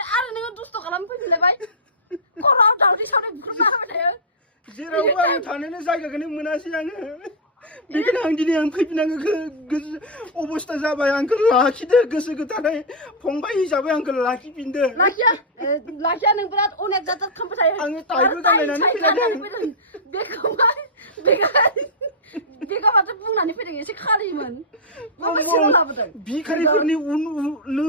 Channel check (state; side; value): normal; both; correlation -0.09